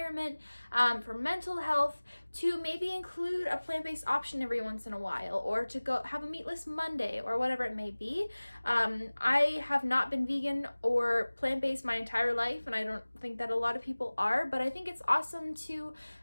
for mental health, to maybe include a plant-based option every once in a while, or to go have a meatless Monday, or whatever it may be. I have not been vegan or plant-based my entire life, and I don't think that a lot of people are, but I think it's awesome to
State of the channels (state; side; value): inverted; both; correlation -1.00